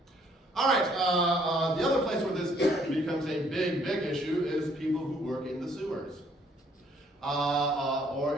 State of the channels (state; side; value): normal; both; correlation 0.64